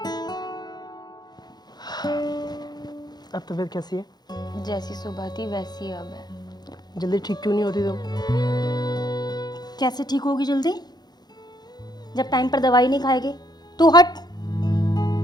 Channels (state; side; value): late; right; 0.20 ms